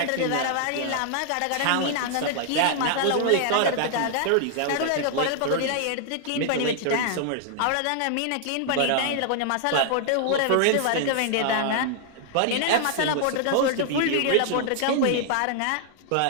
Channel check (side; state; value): both; different; correlation 0.00